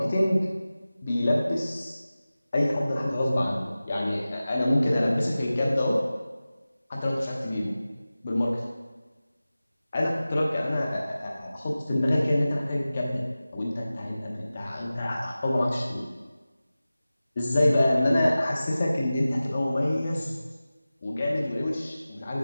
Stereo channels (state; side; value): inverted; both; correlation -0.96